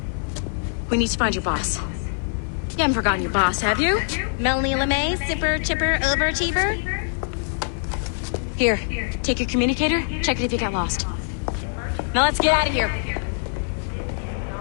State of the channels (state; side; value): silent; right; digital silence